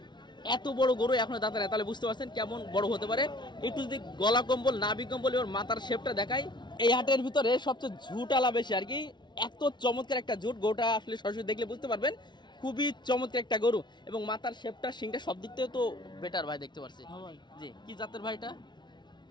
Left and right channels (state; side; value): late; right; 0.21 ms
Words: এত বড় গরু এখনো দাঁতে নেই, তাহলে বুঝতে পারছেন কেমন বড় হতে পারে। একটু যদি গলা কম্বল নাভি কম্বল এবার মাথার শেপটা দেখাই, এই হাটের ভিতরে সবচেয়ে ঝুটালা বেশি আর কি। এত চমৎকার একটা ঝুট, গরুটা আসলে সরাসরি দেখলে বুঝতে পারবেন খুবই চমৎকার একটা গরু, এবং মাথার শেপটা সিংটা সব দিক থেকে তো বেটার ভাই, দেখতে পাচ্ছি। জি, কি জাতের ভাইটা?